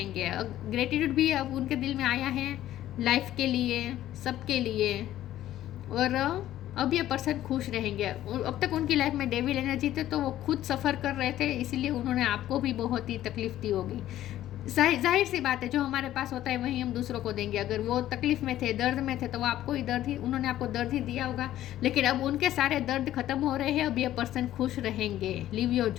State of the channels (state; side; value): quieter; right; 13.2 dB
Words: ग्रेटिट्यूड भी अब उनके दिल में आया है लाइफ के लिए, सबके लिए। और अब ये पर्सन खुश रहेंगे। अब तक उनकी लाइफ में डेविल एनर्जी थे तो वो खुद सफ़र कर रहे थे, इसीलिए उन्होंने आपको भी बहुत ही तकलीफ दी होगी। जाहिर सी बात है, जो हमारे पास होता है वही हम दूसरों को देंगे। अगर वो तकलीफ में थे, दर्द में थे, तो वो आपको ही उन्होंने आपको दर्द ही दिया होगा। लेकिन अब उनके सारे दर्द खत्म हो रहे हैं, अब ये पर्सन खुश रहेंगे। लिव योर